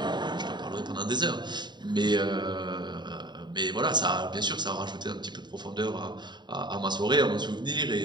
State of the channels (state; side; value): late; left; 0.21 ms